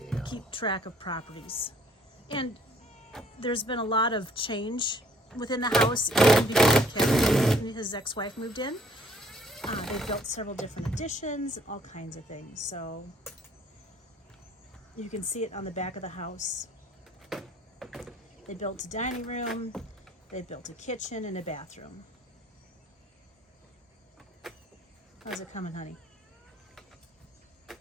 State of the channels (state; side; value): normal; both; correlation 0.59